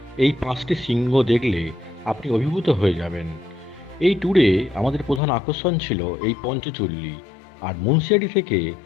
এই ৫টি শৃঙ্গ দেখলে আপনি অভিভূত হয়ে যাবেন। এই ট্যুরে আমাদের প্রধান আকর্ষণ ছিল এই পঞ্চচল্লী, আর মুন্সিয়ারি থেকে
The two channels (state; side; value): drops out; right; at 5.2 s